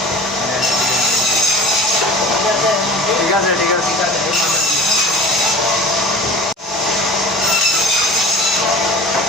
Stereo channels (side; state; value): both; normal; correlation 0.40